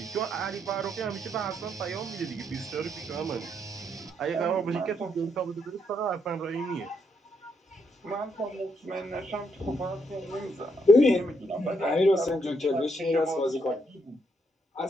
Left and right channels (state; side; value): normal; both; correlation 0.76